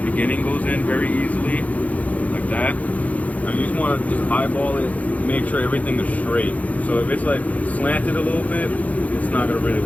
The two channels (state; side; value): late; right; 0.071 ms